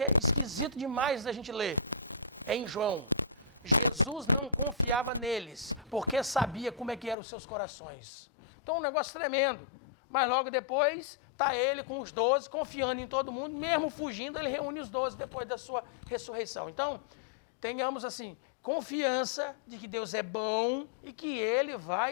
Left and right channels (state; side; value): drops out; right; at 7.2 s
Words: é esquisito demais da gente ler. É em João. Jesus não confiava neles, porque sabia como é que eram os seus corações. Então, um negócio tremendo. Mas logo depois, está ele com os 12, confiando em todo mundo, mesmo fugindo, ele reúne os 12 depois da sua ressurreição. Então, tenhamos assim, confiança de que Deus é bom e que Ele